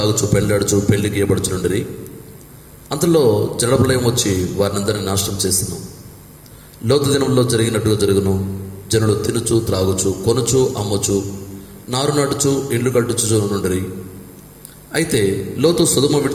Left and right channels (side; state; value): both; identical; correlation 1.00